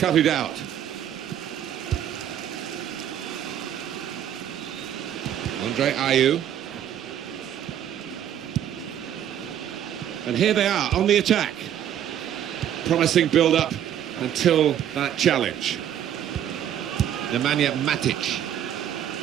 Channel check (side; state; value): left; quieter; 10.3 dB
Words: it out. Andre Ayew. And here they are on the attack. Promising build-up until that challenge. Nemanja Matic.